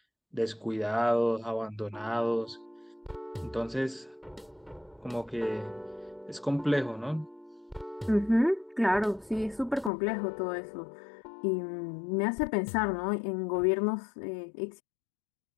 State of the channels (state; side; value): drops out; right; at 9.9 s